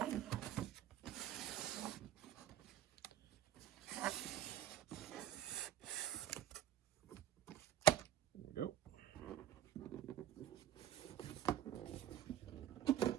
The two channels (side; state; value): left; quieter; 11.2 dB